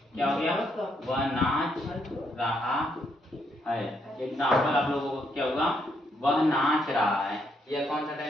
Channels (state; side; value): normal; both; correlation 0.75